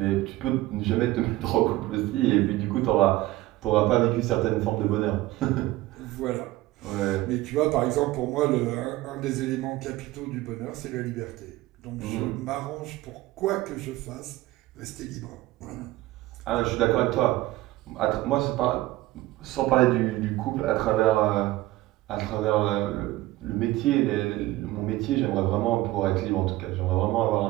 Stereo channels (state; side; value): quieter; left; 17.4 dB